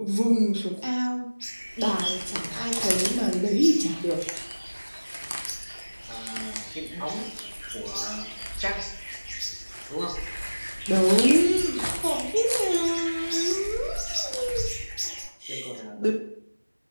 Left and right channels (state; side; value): inverted; both; correlation -1.00